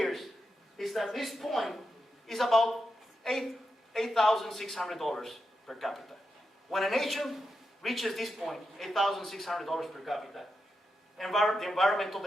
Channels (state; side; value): normal; both; correlation 0.87